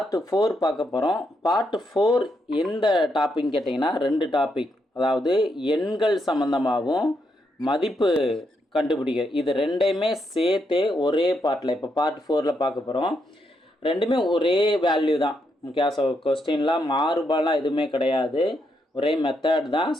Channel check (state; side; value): normal; both; correlation 0.80